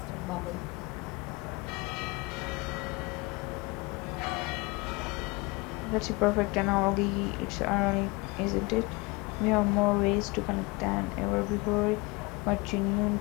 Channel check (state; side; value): quieter; right; 25.2 dB